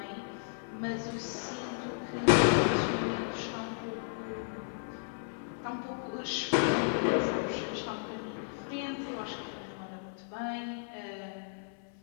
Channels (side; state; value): right; silent; 55 dB below the other